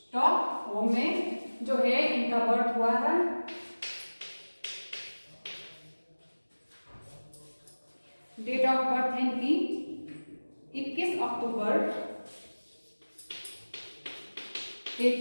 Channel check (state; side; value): inverted; both; correlation -1.00